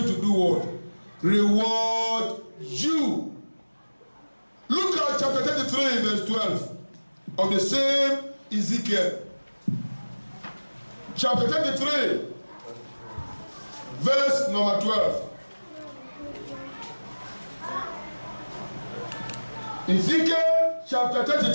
to do what? Reward you. Look at chapter 33 verse 12 of the same Ezekiel. Chapter 33 verse number 12. Ezekiel chapter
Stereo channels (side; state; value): both; inverted; correlation -1.00